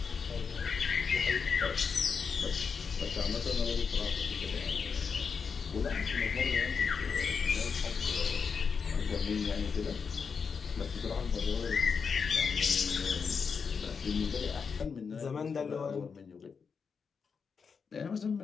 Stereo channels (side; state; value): right; quieter; 5.8 dB